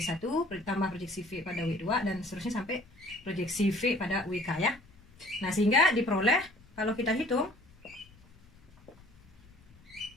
ditambah proyeksi V pada W2 dan seterusnya sampai proyeksi V pada WK ya. Nah, sehingga diperoleh kalau kita hitung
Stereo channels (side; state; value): left; noise; rumble, 26 dB below the sound